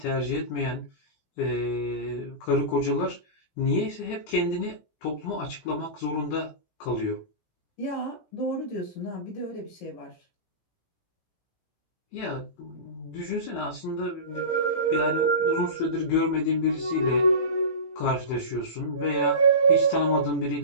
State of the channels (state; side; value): late; right; 17 ms